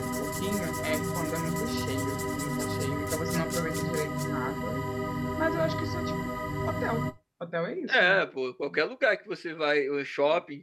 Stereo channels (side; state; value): both; identical; correlation 1.00